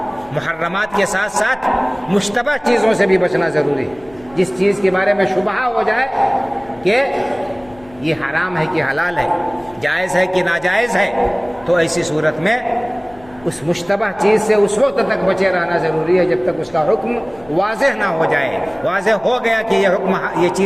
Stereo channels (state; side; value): noise; left; hum, 24 dB below the sound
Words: محرمات کے ساتھ ساتھ مشتبہ چیزوں سے بھی بچنا ضروری ہے۔ جس چیز کے بارے میں شبہ ہو جائے کہ یہ حرام ہے کہ حلال ہے، جائز ہے کہ ناجائز ہے، تو ایسی صورت میں اس مشتبہ چیز سے اس وقت تک بچے رہنا ضروری ہے جب تک اس کا حکم واضح نہ ہو جائے۔ واضح ہو گیا کہ یہ